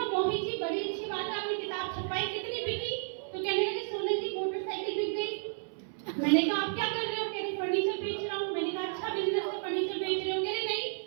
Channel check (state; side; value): silent; left; 56 dB below the other